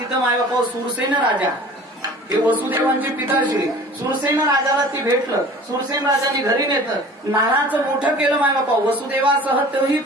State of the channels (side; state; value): both; normal; correlation 0.44